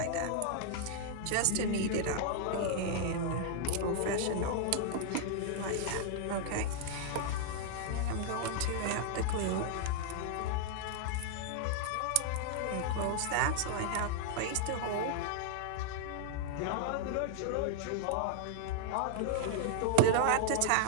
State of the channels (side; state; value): both; different; correlation -0.01